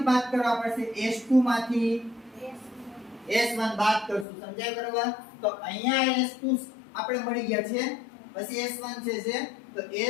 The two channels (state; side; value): drops out; right; at 4.2 s